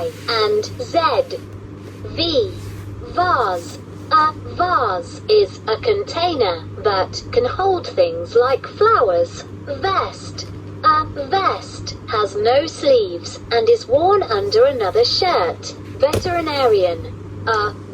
and Z. V. Vase. A vase is a container that can hold things like flowers. Vest. A vest has no sleeves and is worn under another shirt. Veterinarian. A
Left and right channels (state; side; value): identical; both; correlation 1.00